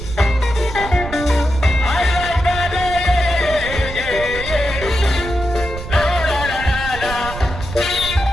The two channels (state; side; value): noise; right; rumble, 9 dB below the sound